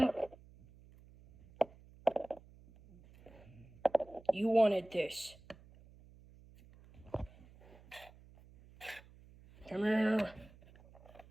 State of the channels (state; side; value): noise; right; hum, 23 dB below the sound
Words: You wanted this. Come here.